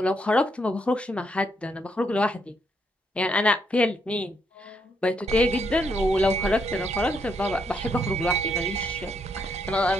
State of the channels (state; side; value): normal; both; correlation 0.76